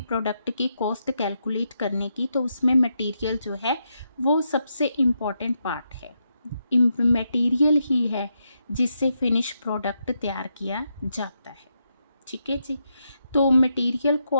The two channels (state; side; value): inverted; both; correlation -0.82